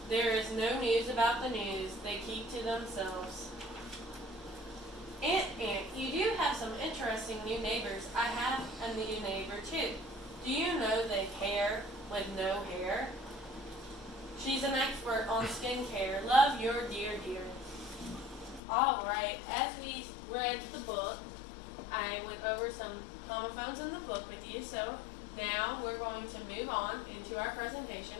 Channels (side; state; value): right; drops out; at 18.6 s